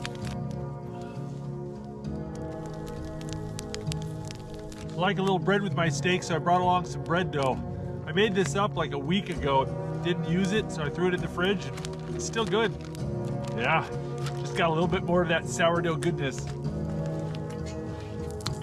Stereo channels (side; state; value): both; identical; correlation 1.00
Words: I like a little bread with my steak, so I brought along some bread dough. I made this up like a week ago. Didn't use it, so I threw it in the fridge. It's still good. Yeah, just got a little bit more of that sourdough goodness.